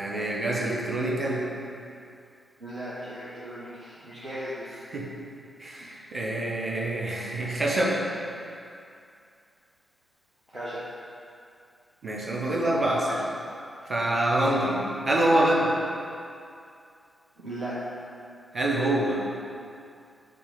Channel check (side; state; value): both; normal; correlation 0.80